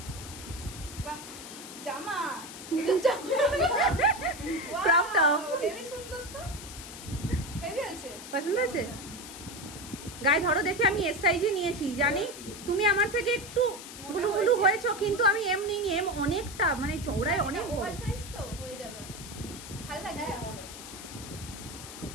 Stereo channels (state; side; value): noise; left; hiss, 12 dB below the sound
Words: জামা পছন্দ আছে? গায়ে ধরো দেখে, আমি এস সাইজে নিয়েছি জানি। তুমি আমার থেকে একটু গুলু গুলু হয়েছো, কিন্তু আমি এম নিইনি, এম অনেকটা মানে চওড়ায় অনেক ওভার সাইজ তো হয়ে যাবে, ভালো লাগবে,